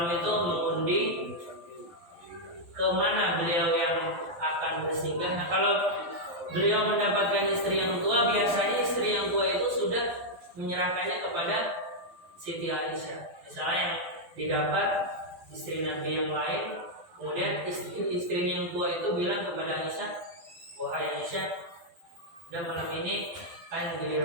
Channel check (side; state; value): left; late; 12 ms